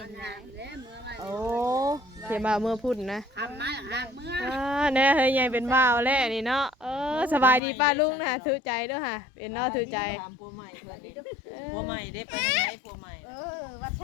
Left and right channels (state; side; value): drops out; right; at 7.6 s